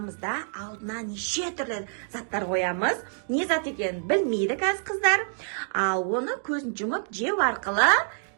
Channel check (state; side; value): silent; left; digital silence